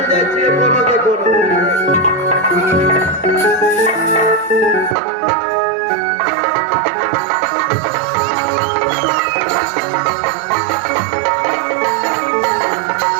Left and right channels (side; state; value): left; drops out; at 5.0 s